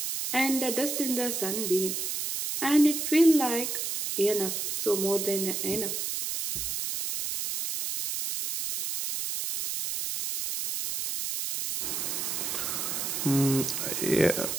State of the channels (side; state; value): right; noise; hiss, 2 dB below the sound